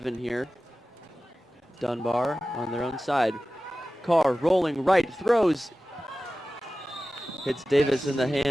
here. Dunbar on their own side. Carr rolling right, throws. Hits Davis in the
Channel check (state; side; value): normal; both; correlation 0.96